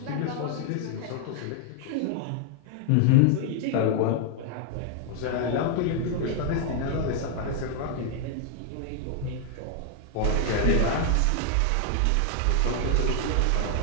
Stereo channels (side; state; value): both; different; correlation 0.00